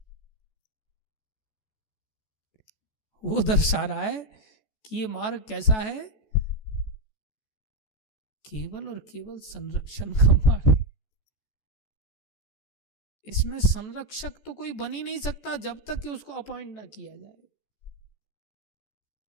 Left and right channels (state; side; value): late; right; 14 ms